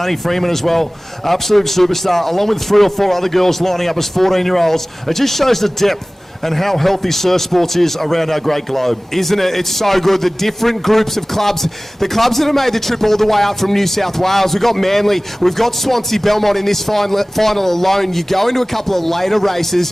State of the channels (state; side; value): normal; both; correlation 0.98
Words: Freeman as well, absolute superstar, along with 3 or 4 other girls lining up as 14-year-olds. It just shows the depth and how healthy surf sports is around our great globe. Isn't it? It's so good. The different groups of clubs, the clubs that have made the trip all the way up from New South Wales. We've got Manly, we've got Swansea Belmont in this final alone. You go into a couple of later